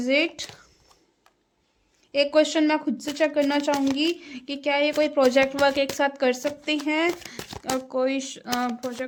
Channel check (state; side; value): identical; both; correlation 1.00